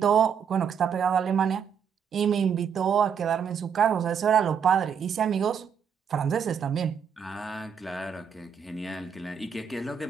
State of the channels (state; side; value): quieter; left; 7.3 dB